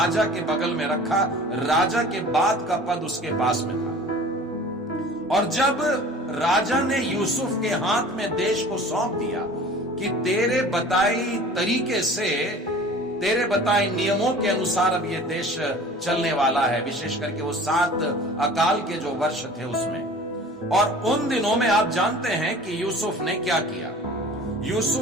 के बगल में रखा। राजा के बाद का पद उसके पास में था, और जब राजा ने यूसुफ के हाथ में देश को सौंप दिया कि तेरे बताई तरीके से, तेरे बताए नियमों के अनुसार अब ये देश चलने वाला है, विशेष करके वो 7 अकाल के जो वर्ष थे उसमें। और उन दिनों में आप जानते हैं कि यूसुफ ने क्या किया।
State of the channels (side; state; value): both; normal; correlation 0.44